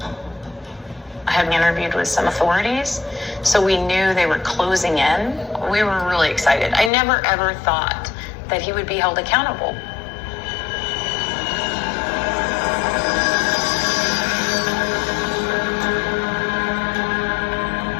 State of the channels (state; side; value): drops out; right; at 6.9 s